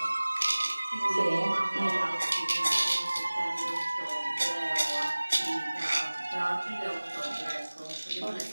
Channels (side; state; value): both; inverted; correlation -1.00